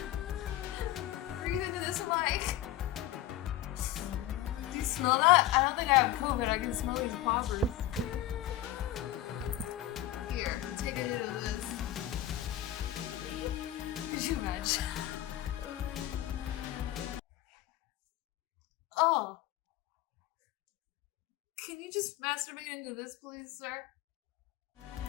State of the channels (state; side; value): quieter; right; 13.0 dB